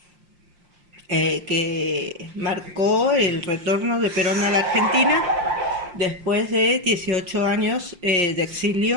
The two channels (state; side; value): late; left; 5.7 ms